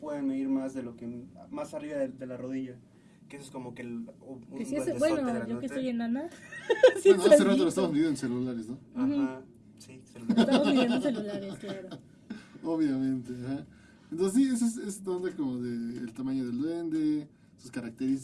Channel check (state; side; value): identical; both; correlation 1.00